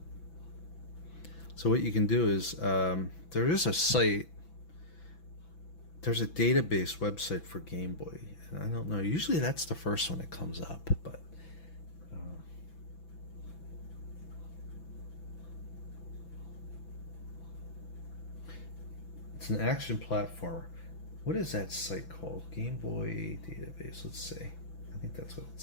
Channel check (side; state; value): right; late; 6.0 ms